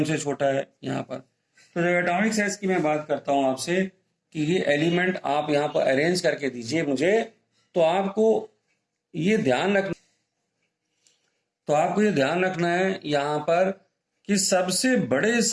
से छोटा है यहाँ पर। तो जब एटॉमिक साइज की मैं बात करता हूं आपसे कि ये एलिमेंट आप यहाँ पर अरेंज करके दीजिए मुझे, तो आपको ये ध्यान रखना है यहाँ पर कि सबसे बड़े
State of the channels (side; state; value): both; identical; correlation 1.00